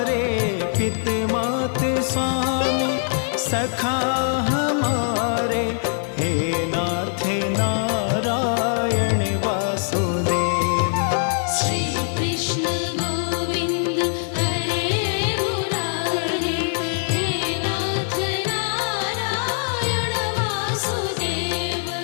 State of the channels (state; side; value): silent; right; digital silence